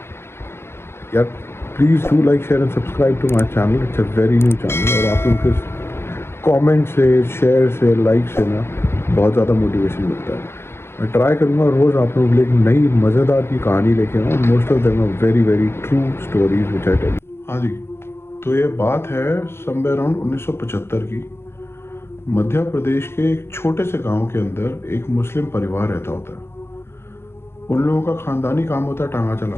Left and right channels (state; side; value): late; right; 0.12 ms